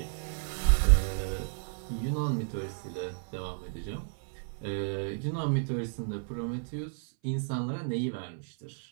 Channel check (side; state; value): left; silent; 56 dB below the other